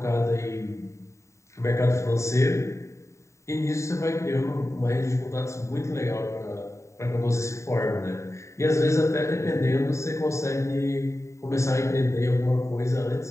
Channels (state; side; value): late; right; 0.14 ms